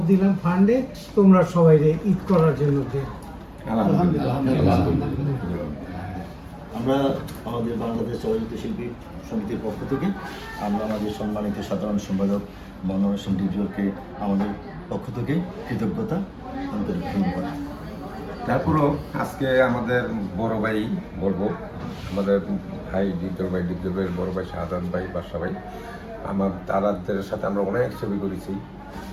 দিলাম ফান্ডে, তোমরা সবাই ঈদ করার জন্য দিও। আমরা আমাদের বাংলাদেশ চলচ্চিত্র শিল্পী সমিতির পক্ষ থেকে আমরা আমাদের সম্মানিত সাধারণ সম্পাদক মনোহর হোসেন ডিজিওকে আমাদের পক্ষ থেকে কৃতজ্ঞতা আন্তরিক ধন্যবাদ। তারপরও আজকে আমাদের বড় ভাই বলবো, আমাদের ভাই দ্বিতীয় ভাইয়ের বড় ভাই শাহাদাত ভাই, বাদশা ভাই, তাদের সাথে আমরা অনেক ছবি করেছি,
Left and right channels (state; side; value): identical; both; correlation 1.00